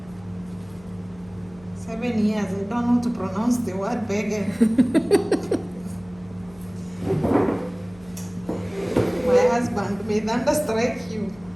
7 years, I don't know how to pronounce the word beggar. My husband may thunderstrike you.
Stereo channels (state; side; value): noise; left; hum, 24 dB below the sound